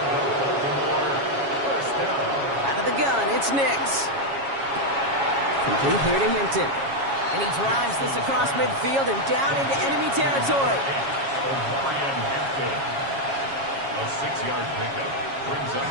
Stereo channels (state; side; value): late; left; 7.3 ms